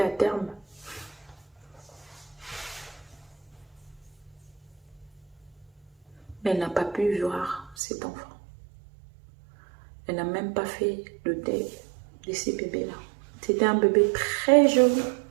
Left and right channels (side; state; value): left; drops out; at 7.8 s